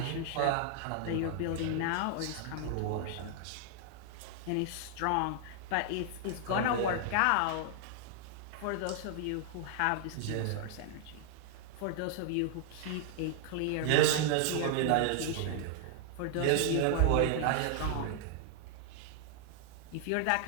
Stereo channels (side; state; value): both; different; correlation 0.00